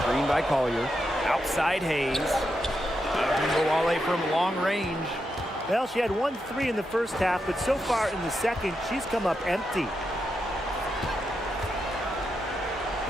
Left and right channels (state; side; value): normal; both; correlation 0.85